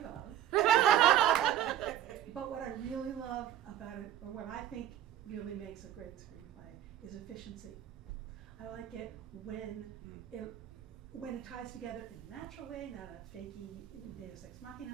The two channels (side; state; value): left; quieter; 11.4 dB